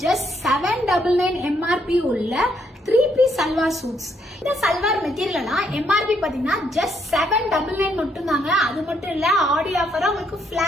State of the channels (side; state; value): both; normal; correlation 0.73